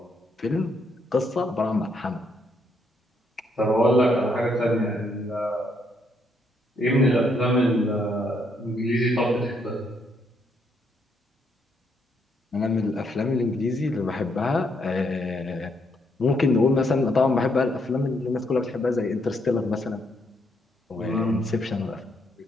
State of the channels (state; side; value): normal; both; correlation 0.74